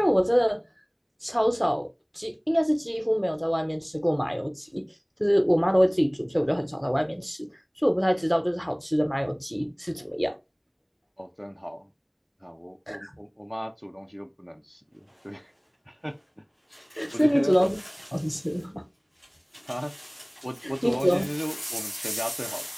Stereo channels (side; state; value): both; identical; correlation 1.00